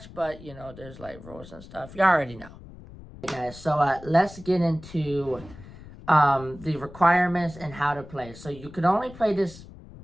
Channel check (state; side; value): noise; left; rumble, 17 dB below the sound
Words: but, there's, like, rules and stuff. You already know. Okay, guys, so, let's get into, the requirements and how to play. So, you can only play this,